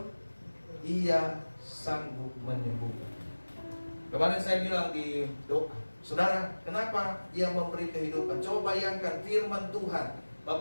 Ia sanggup menyembuhkan. Kemarin saya bilang di doa, saudara, kenapa ia memberi kehidupan? Coba bayangkan firman Tuhan.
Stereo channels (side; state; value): both; inverted; correlation -1.00